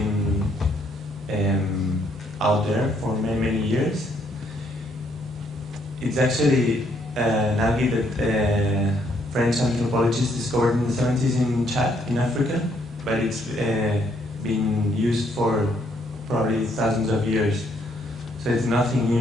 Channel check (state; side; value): normal; both; correlation 0.70